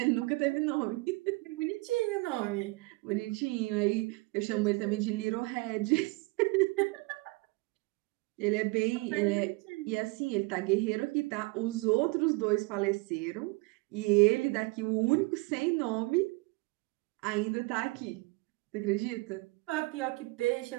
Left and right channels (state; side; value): quieter; left; 25.6 dB